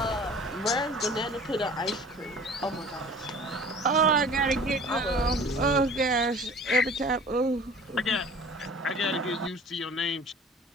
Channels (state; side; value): normal; both; correlation 0.46